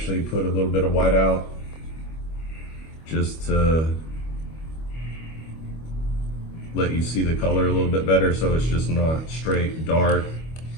put a little bit of white out just to let you see the color a little bit better, so it's just not straight dark,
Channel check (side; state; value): right; late; 25 ms